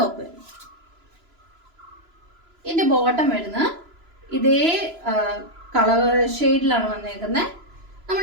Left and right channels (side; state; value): left; late; 3.0 ms